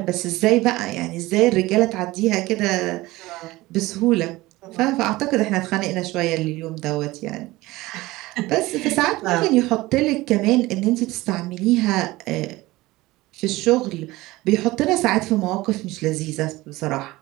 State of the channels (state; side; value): quieter; left; 19.3 dB